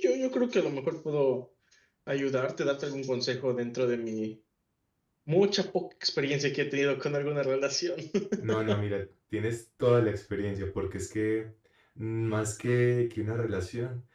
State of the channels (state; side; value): identical; both; correlation 1.00